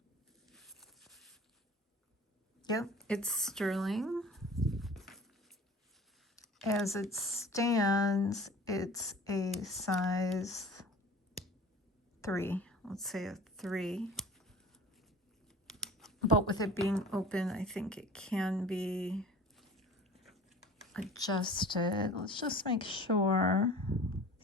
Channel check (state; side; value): normal; both; correlation 0.43